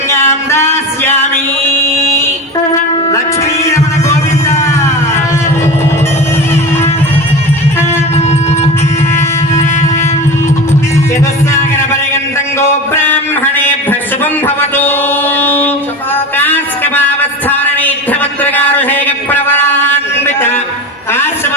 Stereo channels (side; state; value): both; normal; correlation 0.29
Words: दास्यामि लक्ष्मी रमण गोविंद चतुस्सागर पर्यन्तं गो ब्राह्मणेभ्यः शुभं भवतु कास्कमावस्थानैध्यवत्रगारुषेक प्रवरान्वित